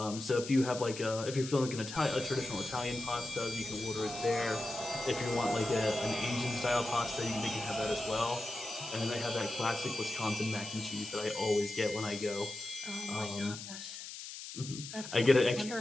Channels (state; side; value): noise; left; hiss, 10 dB below the sound